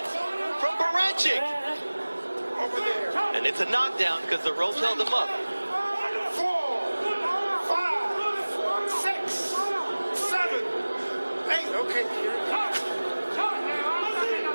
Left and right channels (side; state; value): both; inverted; correlation -1.00